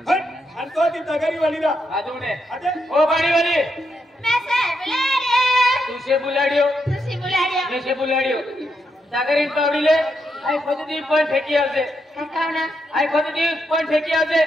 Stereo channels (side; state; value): both; normal; correlation 0.82